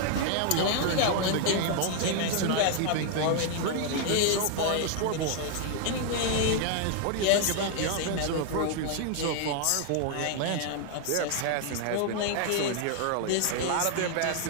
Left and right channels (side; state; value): both; different; correlation 0.00